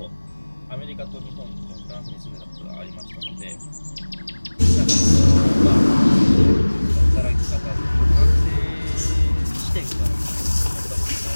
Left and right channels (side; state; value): both; inverted; correlation -1.00